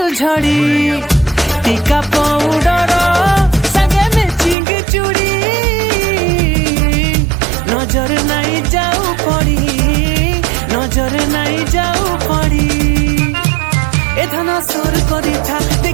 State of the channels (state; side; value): drops out; left; at 4.5 s